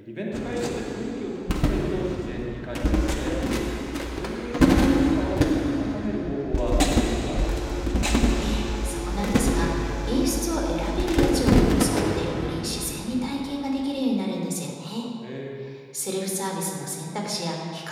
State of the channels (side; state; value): both; identical; correlation 1.00